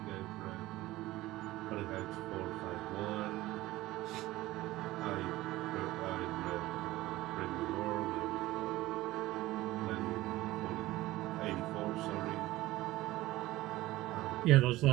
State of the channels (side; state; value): left; quieter; 17.4 dB